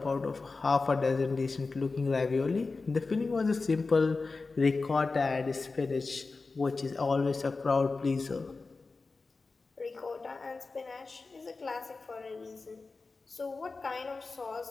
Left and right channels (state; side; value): quieter; right; 3.9 dB